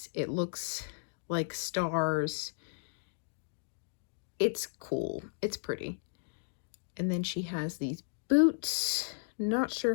It looks like stars. It's cool. It's pretty. And then she has these boots. Not sure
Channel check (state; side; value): silent; right; digital silence